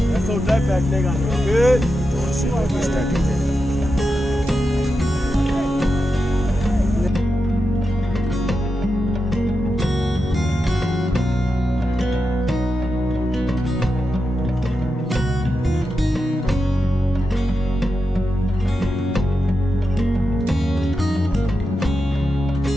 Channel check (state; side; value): normal; both; correlation 0.89